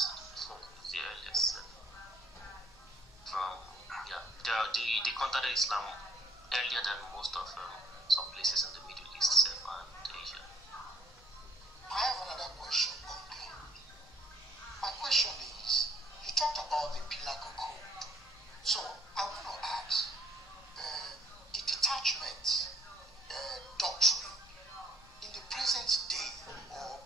from the earliest. They contacted Islam earlier than most of some places in the Middle East and Asia. I have another question. Okay. My question is, you talked about the Pilaco Code. So I want to ask, the detachment doctrine in the present day, or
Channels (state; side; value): noise; left; rumble, 27 dB below the sound